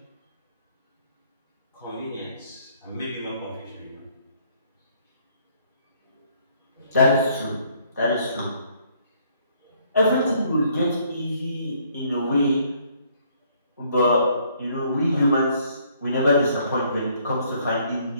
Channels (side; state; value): both; inverted; correlation -0.65